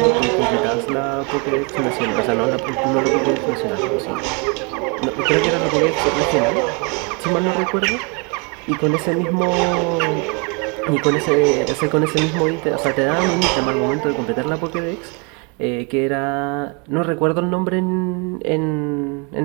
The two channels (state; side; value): quieter; left; 33.1 dB